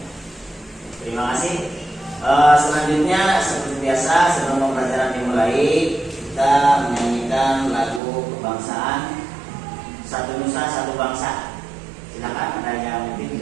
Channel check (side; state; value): left; drops out; at 8.0 s